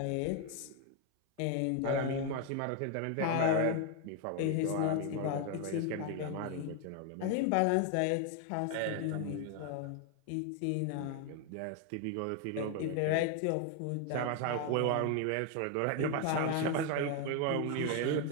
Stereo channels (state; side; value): different; both; correlation 0.01